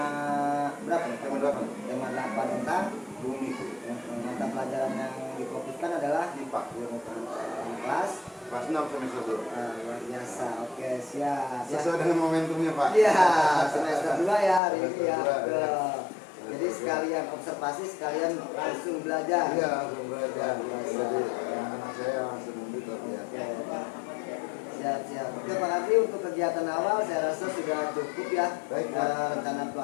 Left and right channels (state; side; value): drops out; right; at 14.6 s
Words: berapa nih? Tema 8. Tema 8 tentang Bumi. mata pelajaran yang difokuskan adalah IPA. Kelas 6 semester 2. luar biasa. Oke, siap. Sesuai dengan momentumnya Pak. Iya, semester 2 ya hari ini ya. Semester 2, ya. Jadi sekalian observasi, sekalian langsung belajar. Iya, langsung belajar. Jadi anak saya langsung membuka ya. Siap. Oke Pak Kardi, untuk kegiatan awal saya rasa sudah cukup ya. Baik, rencana